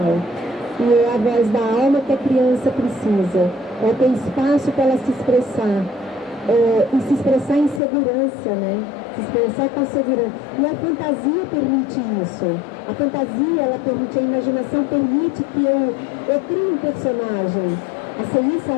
E é a voz da alma que a criança precisa. Ter espaço para ela se expressar. E se expressar em segurança, né? Se expressar com segurança. E a fantasia permite isso. A fantasia, ela permite, a imaginação permite que eu crie um personagem. A Ceissa,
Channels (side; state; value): right; drops out; at 7.8 s